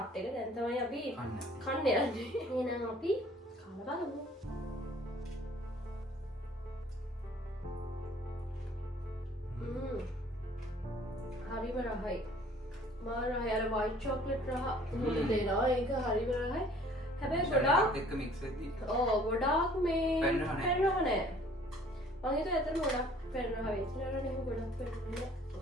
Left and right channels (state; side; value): normal; both; correlation 0.54